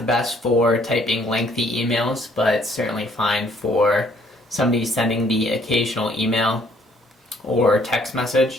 best for typing lengthy emails, but certainly fine for somebody sending the occasional email or text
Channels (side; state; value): both; normal; correlation 0.63